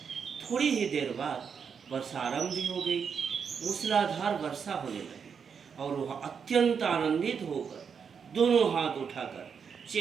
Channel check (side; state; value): left; quieter; 6.6 dB